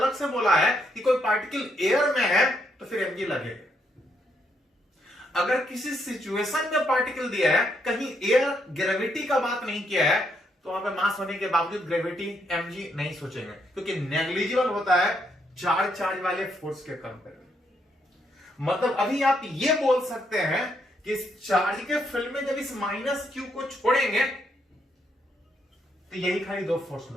से बोला है कि कोई पार्टिकल एयर में है तो फिर mg लगेगा। अगर किसी सिचुएशन में पार्टिकल दिया है, कहीं एयर ग्रेविटी का बात नहीं किया है, तो वहां पे मास होने के बावजूद ग्रेविटी mg नहीं सोचेंगे, क्योंकि नेग्लिजिबल होता है चार्ज वाले फोर्स के कंपेयर में। मतलब अभी आप ये बोल सकते हैं कि इस चार्ज के फील्ड में जब इस -q को छोड़ेंगे तो यही खाली दो फोर्स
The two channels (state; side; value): normal; both; correlation 0.76